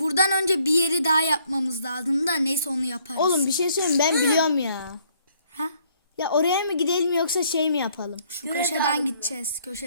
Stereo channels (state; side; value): inverted; both; correlation -0.66